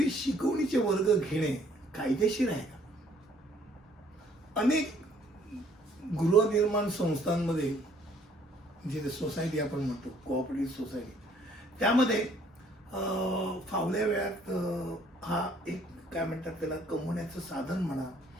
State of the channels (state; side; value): normal; both; correlation 0.62